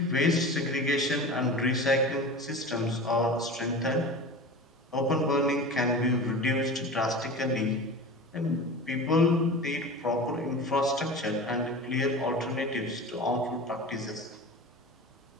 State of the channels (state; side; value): normal; both; correlation 0.33